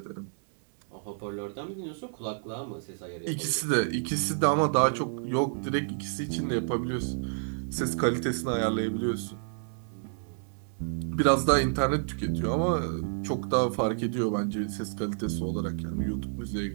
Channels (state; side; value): silent; left; digital silence